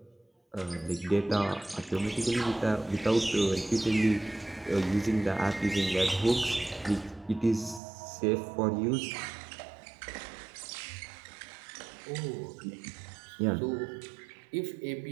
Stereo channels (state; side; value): drops out; left; at 7.8 s